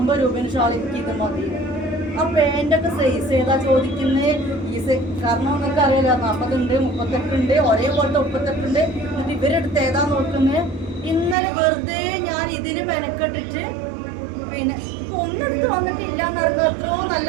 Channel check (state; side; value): drops out; left; at 11.4 s